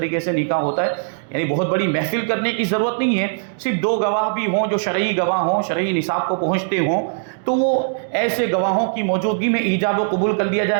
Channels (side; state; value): left; silent; digital silence